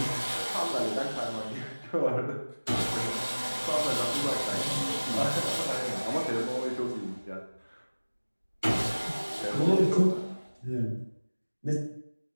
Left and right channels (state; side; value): inverted; both; correlation -1.00